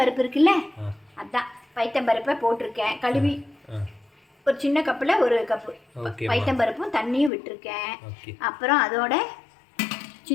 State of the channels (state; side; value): drops out; right; at 7.3 s